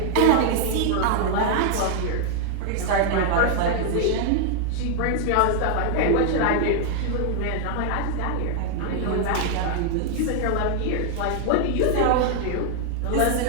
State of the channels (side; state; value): both; different; correlation 0.00